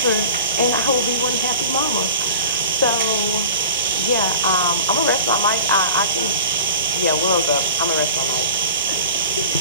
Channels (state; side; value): inverted; both; correlation -0.38